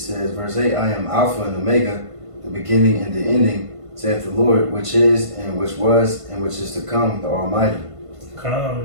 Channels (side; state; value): left; late; 1.5 ms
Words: verse 8, I am Alpha and Omega, the beginning and the ending, saith the Lord, which is, and which was, and which is to come, the Almighty. Come on,